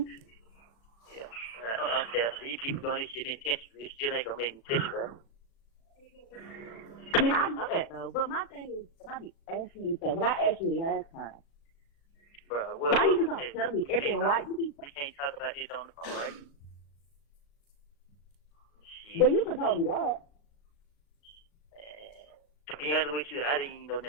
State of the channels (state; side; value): late; right; 36 ms